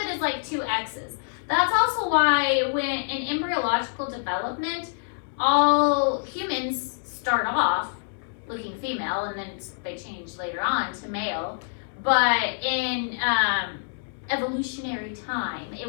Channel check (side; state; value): right; silent; 61 dB below the other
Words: as like two X's. That's also why when in embryological development, all humans start off looking female and then they change later on to male. But in evolutionary time,